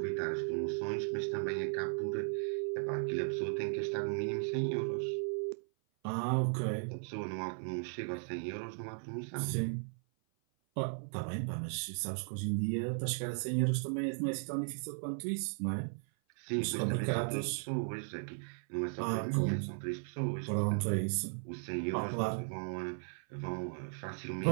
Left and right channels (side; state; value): left; silent; 53 dB below the other